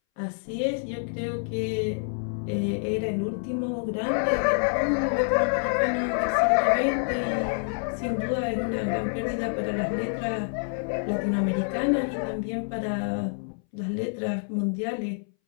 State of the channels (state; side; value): silent; right; 60 dB below the other